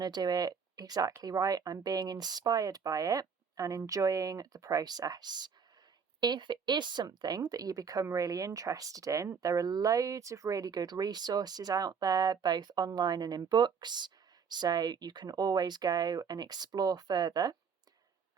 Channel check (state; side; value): quieter; left; 6.3 dB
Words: do it exactly right. I'm being inspired by it and enjoying the process. If it is something that you become really interested in, there are loads of really good resources out there, both online and in books, so you can always go and explore further